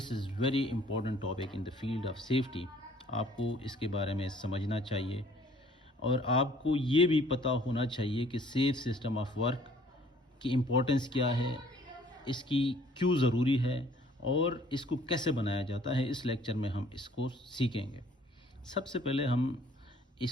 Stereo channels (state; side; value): normal; both; correlation 0.57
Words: is very important topic in the field of safety. آپ کو اس کے بارے میں سمجھنا چاہیے اور آپ کو یہ بھی پتہ ہونا چاہیے کہ سیف سسٹم آف ورک کی امپورٹنس کیا ہے، اس کی کیوں ضروری ہے اور اس کو کیسے بنایا جاتا ہے. اس لیکچر میں ہم اس کو سیکھیں گے. سب سے پہلے ہم